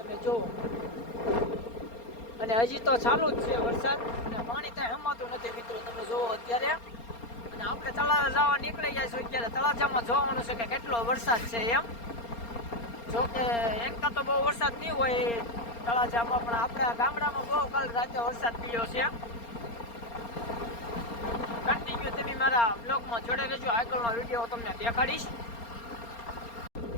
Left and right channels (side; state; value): right; late; 4.3 ms